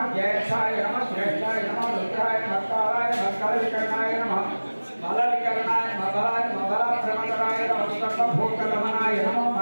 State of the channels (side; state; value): both; inverted; correlation -1.00